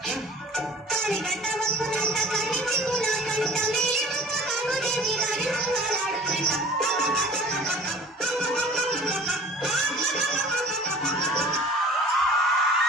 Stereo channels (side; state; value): both; normal; correlation 0.45